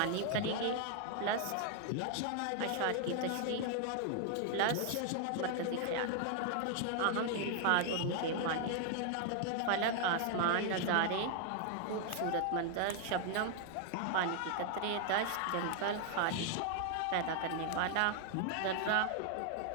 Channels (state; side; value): different; both; correlation 0.00